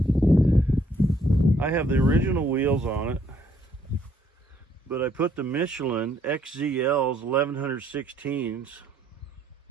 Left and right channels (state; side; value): normal; both; correlation 0.67